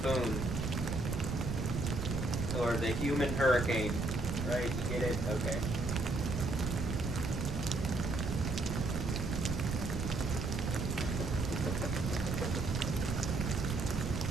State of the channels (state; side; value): noise; right; rumble, 2 dB below the sound